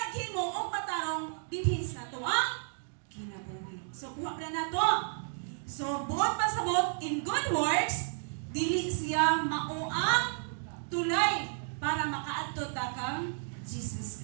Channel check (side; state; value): left; silent; digital silence